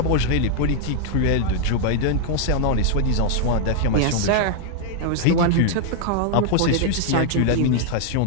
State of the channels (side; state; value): both; different; correlation 0.00